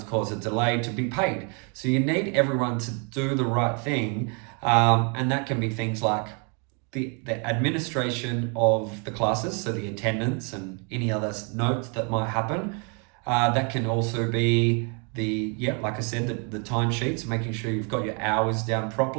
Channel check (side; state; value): left; quieter; 36.2 dB